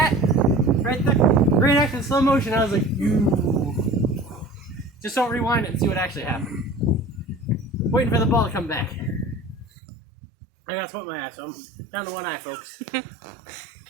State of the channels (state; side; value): drops out; left; at 9.7 s